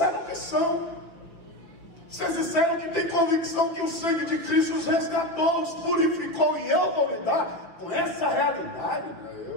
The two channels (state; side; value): late; right; 5.8 ms